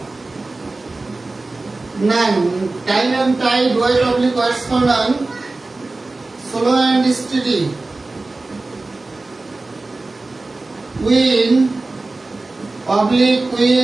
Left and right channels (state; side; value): quieter; left; 3.3 dB